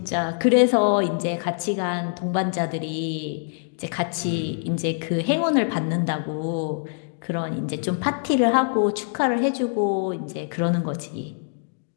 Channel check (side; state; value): right; silent; digital silence